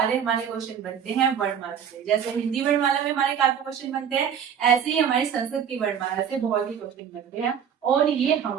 हमारे क्वेश्चन बनते हैं वर्णमाला से। जैसे हिंदी वर्णमाला में हमारे काफी क्वेश्चन बनते हैं, ऐसे ही हमारी संस्कृत की वर्णमाला से बहुत ही क्वेश्चन बनते हैं। और ये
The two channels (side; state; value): left; quieter; 8.1 dB